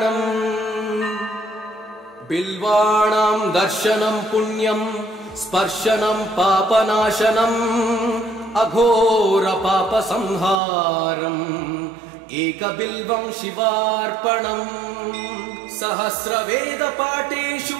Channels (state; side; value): drops out; left; at 10.6 s